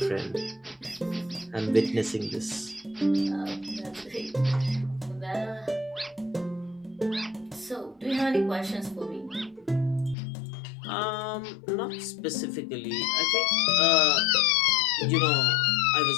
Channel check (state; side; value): drops out; right; at 10.2 s